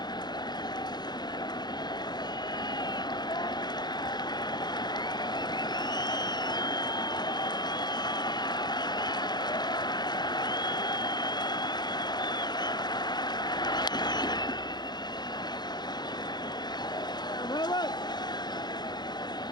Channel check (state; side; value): late; right; 0.21 ms